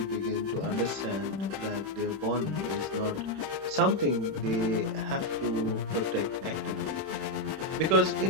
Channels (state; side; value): late; left; 31 ms